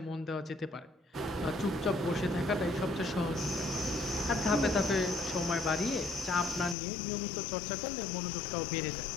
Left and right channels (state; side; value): drops out; right; at 6.8 s